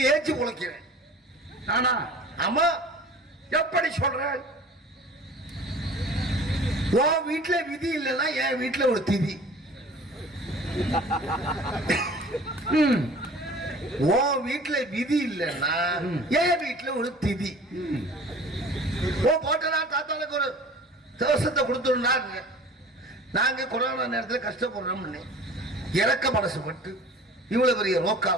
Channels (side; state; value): both; normal; correlation 0.44